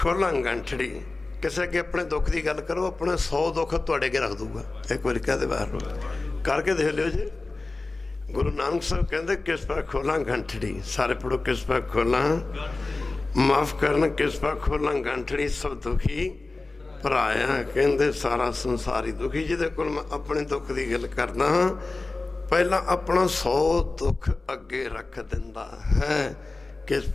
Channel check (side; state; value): right; quieter; 3.3 dB